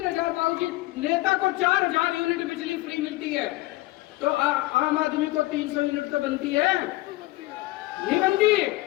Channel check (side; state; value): right; quieter; 19.1 dB